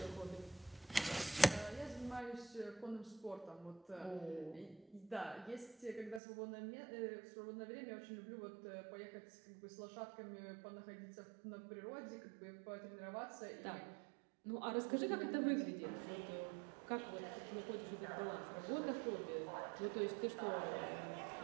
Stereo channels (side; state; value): left; drops out; at 6.2 s